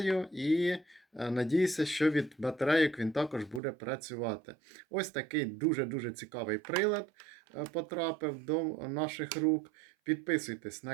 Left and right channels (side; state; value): left; drops out; at 3.6 s